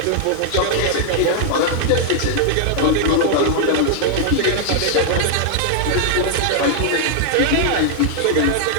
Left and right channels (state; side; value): different; both; correlation 0.00